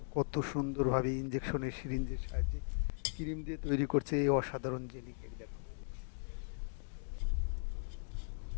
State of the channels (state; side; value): silent; right; digital silence